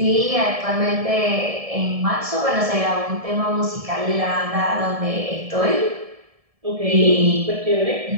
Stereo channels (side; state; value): left; late; 1.7 ms